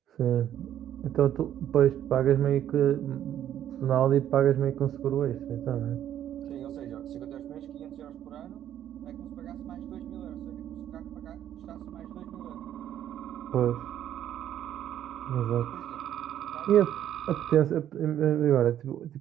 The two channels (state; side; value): quieter; left; 11.0 dB